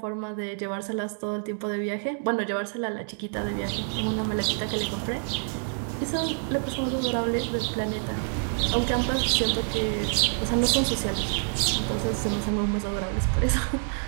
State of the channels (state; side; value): silent; left; 60 dB below the other